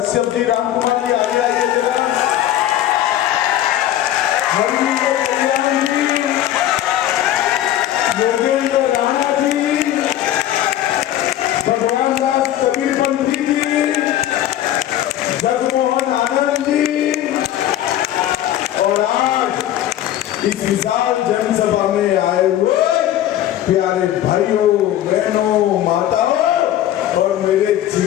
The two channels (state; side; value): quieter; right; 12.4 dB